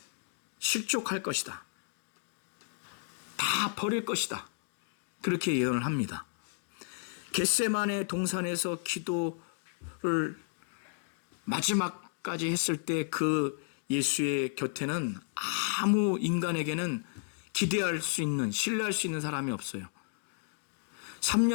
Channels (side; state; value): right; silent; digital silence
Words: 실족할 것이다. 다 버릴 것이다. 그렇게 예언을 합니다. 겟세마네 동산에서 기도를 마지막까지 했을 때 그 예수의 곁에는 아무 인간에게는 기대할 수 있는, 신뢰할 수 있는 사람이 없어요.